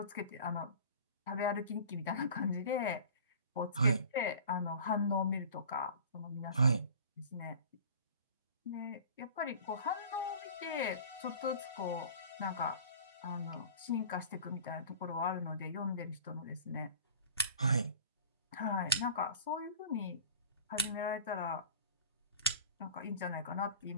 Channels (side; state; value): both; inverted; correlation -0.42